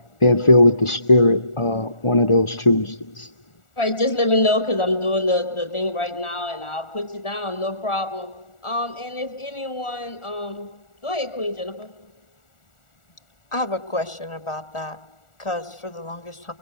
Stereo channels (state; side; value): late; right; 1.4 ms